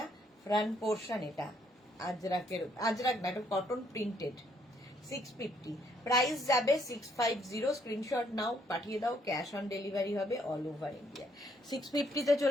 ফ্রন্ট পোর্শন এটা। আজরাক না, এটা কটন প্রিন্টেড। 650, প্রাইস যাবে 650। স্ক্রিনশট নাও, পাঠিয়ে দাও, ক্যাশ অন ডেলিভারি হবে অল ওভার ইন্ডিয়া। 650-তে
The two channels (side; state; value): both; normal; correlation 0.69